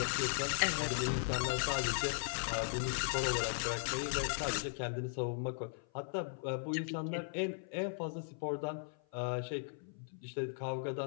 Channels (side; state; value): right; silent; 53 dB below the other